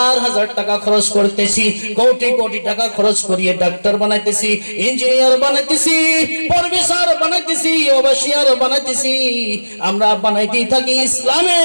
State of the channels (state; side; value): inverted; both; correlation -1.00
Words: হাজার টাকা খরচ করতেছি, কোটি কোটি টাকা খরচ করিয়ে ডাক্তার বানাইতেছি, ইঞ্জিনিয়ার বানাইতেছি, প্রফেসর বানাইতেছি, ওভাসিয়ার বানাইতেছি। আমরা বানাইতেই থাকি। ইসলামে